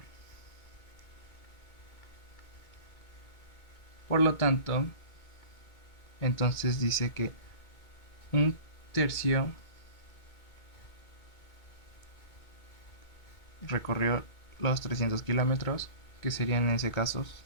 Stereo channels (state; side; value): late; right; 2.2 ms